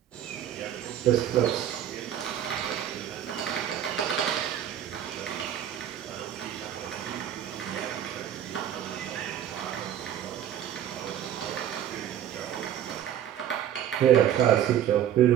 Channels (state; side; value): quieter; left; 10.6 dB